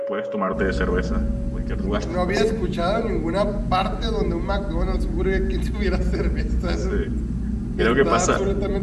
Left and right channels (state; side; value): identical; both; correlation 1.00